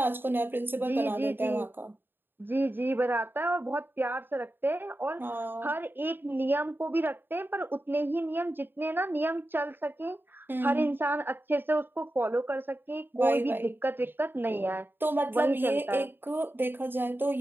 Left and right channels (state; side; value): late; left; 0.097 ms